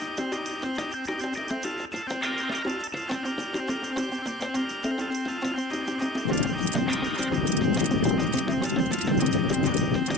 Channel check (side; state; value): both; normal; correlation 0.49